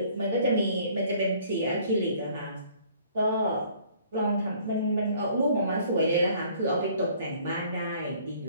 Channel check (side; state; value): both; inverted; correlation -0.57